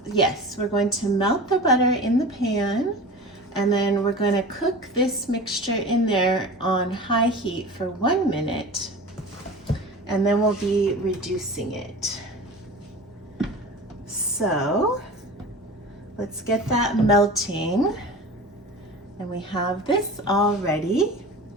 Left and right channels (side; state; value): both; normal; correlation 0.34